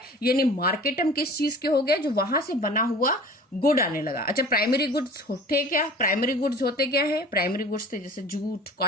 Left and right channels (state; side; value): normal; both; correlation 0.43